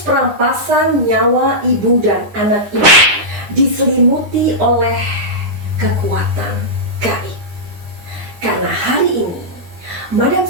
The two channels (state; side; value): late; left; 9.8 ms